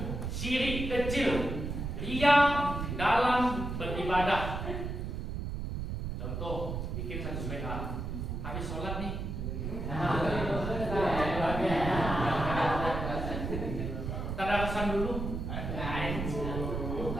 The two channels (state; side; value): noise; right; rumble, 4 dB below the sound